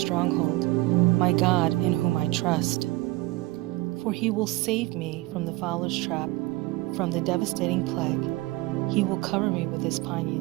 my God in whom I trust. For He will save me from the fowler's trap, from the devastating plague. He will cover me with His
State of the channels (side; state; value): left; quieter; 20.3 dB